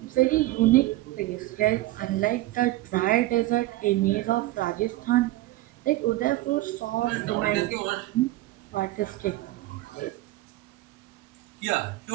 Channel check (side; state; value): left; quieter; 17.4 dB